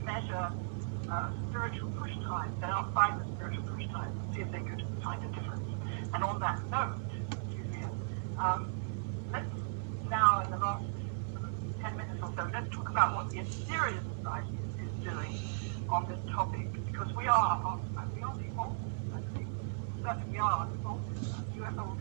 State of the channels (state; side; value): silent; left; 53 dB below the other